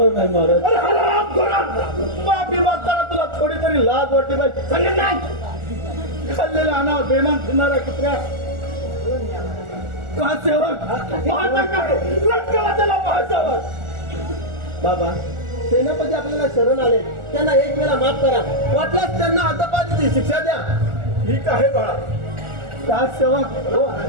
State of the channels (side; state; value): left; late; 1.4 ms